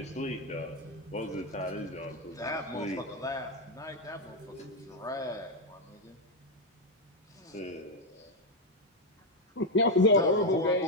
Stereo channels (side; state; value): both; normal; correlation 0.05